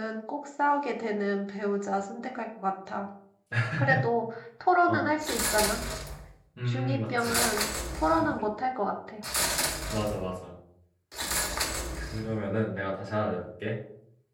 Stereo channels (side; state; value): both; identical; correlation 1.00